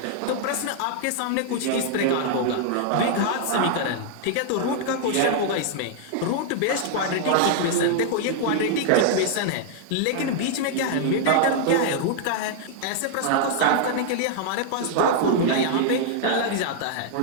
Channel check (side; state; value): both; different; correlation -0.01